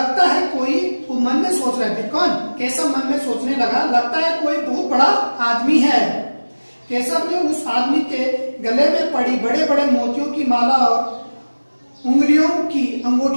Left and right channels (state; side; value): inverted; both; correlation -1.00